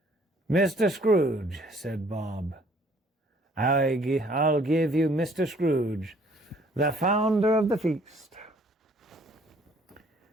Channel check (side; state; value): both; normal; correlation 0.60